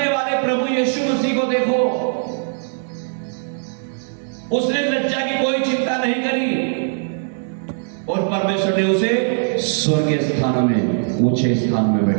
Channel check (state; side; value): silent; left; digital silence